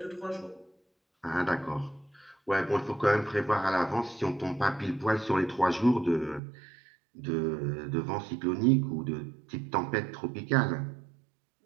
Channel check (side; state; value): left; drops out; at 6.4 s